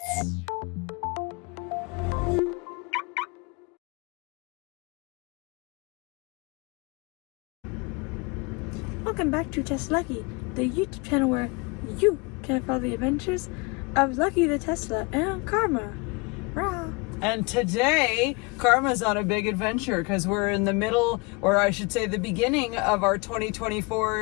Welcome back to TesLUCKY, the YouTube channel where you can follow the adventures of Lucky the Tesla and Karma. Rah. And today, Karma's on a big adventure because we're in the middle, or I should say the beginning of our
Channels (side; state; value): right; quieter; 28.6 dB